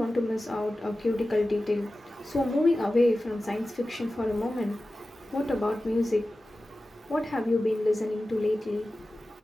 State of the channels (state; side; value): normal; both; correlation 0.95